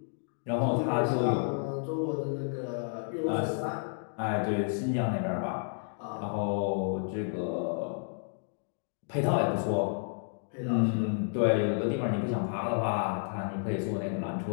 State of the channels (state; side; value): silent; right; digital silence